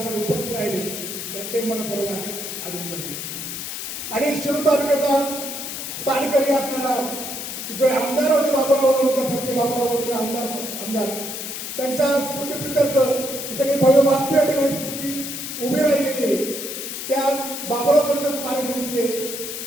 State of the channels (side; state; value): left; noise; hiss, 6 dB below the sound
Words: उपस्थित राहिले त्यांचे मनपूर्वक अभिनंदन आहे. आणि शिरूर तालुक्याचा साडकरी असणारा जो आमदार होते बाबूराव लोणकर सारखे बाबूराव लोणकर आमदार त्यांच्या स्मृतीप्रित्यर्थ ही सगळी भव्य वास्तू या ठिकाणी स्मृती उभी राहिलेली आहे. त्या बाबूराव लोणकर स्मारक समितीचे